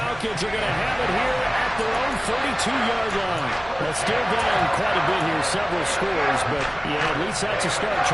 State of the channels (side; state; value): right; noise; hum, 20 dB below the sound